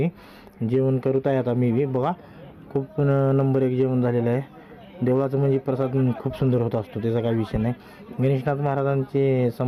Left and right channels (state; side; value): identical; both; correlation 1.00